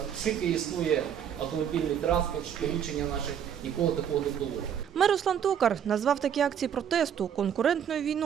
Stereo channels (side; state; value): left; quieter; 8.8 dB